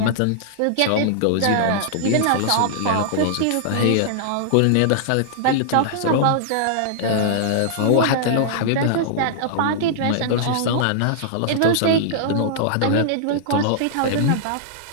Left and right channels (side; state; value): both; different; correlation -0.01